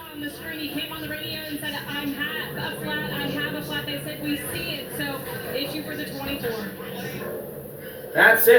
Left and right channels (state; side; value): identical; both; correlation 1.00